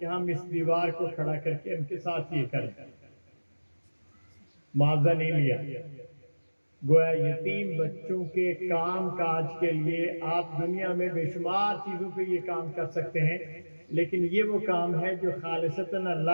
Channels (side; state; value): both; inverted; correlation -1.00